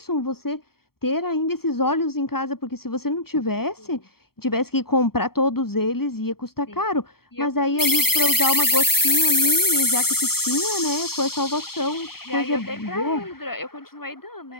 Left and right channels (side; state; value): right; late; 0.95 ms